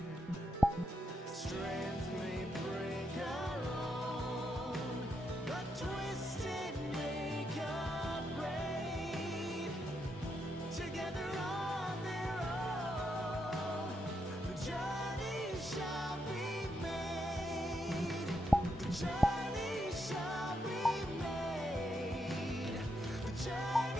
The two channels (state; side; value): normal; both; correlation 0.80